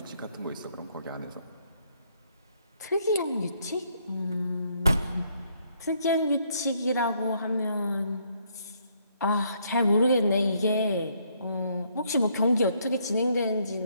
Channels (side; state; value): both; inverted; correlation -0.70